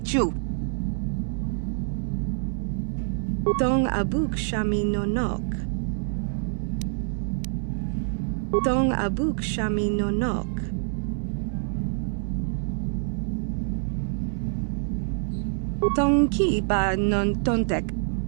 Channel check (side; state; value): left; silent; 61 dB below the other